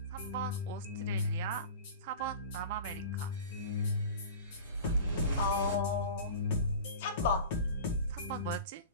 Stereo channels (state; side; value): inverted; both; correlation -0.36